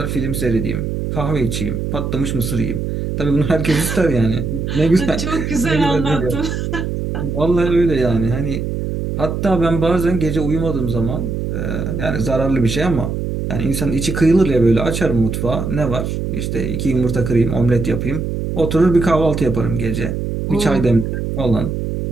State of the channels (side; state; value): right; noise; hum, 3 dB below the sound